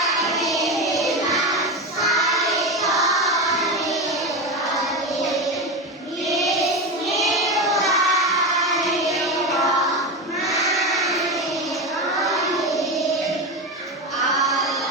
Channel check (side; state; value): both; normal; correlation 0.19